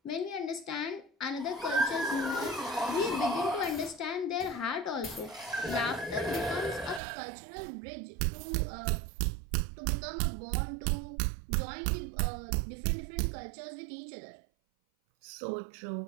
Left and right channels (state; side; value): drops out; left; at 7.0 s